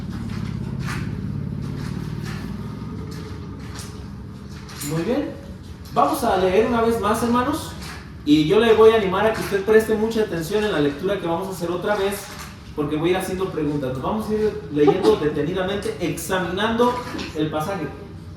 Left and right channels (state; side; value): identical; both; correlation 1.00